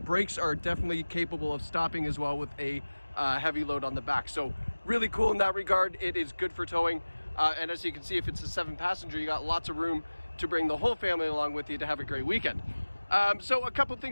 Brakes are definitely capable of stopping as well with a heavy load on the back. So really cool in that regard. It is good for towing. And as you can see, if it's a 7-passenger, you got lots of room to bring the whole family along with you to have a great weekend. So a couple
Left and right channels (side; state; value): both; inverted; correlation -1.00